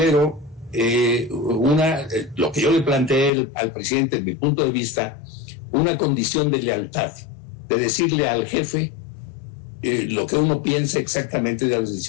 lo que yo le planteé al presidente, desde mi punto de vista, una condición de lealtad, de decirle al jefe lo que uno piensa exactamente de las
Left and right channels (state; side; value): drops out; right; at 3.3 s